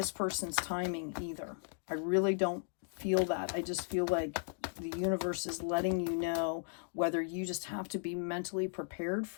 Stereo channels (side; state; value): right; silent; 54 dB below the other